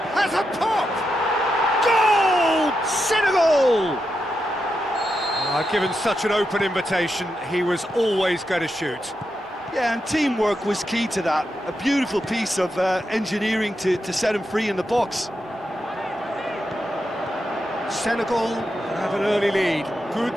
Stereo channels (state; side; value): normal; both; correlation 0.86